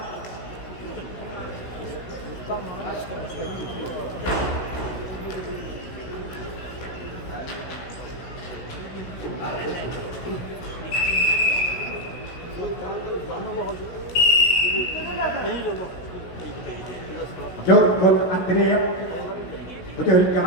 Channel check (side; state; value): right; late; 16 ms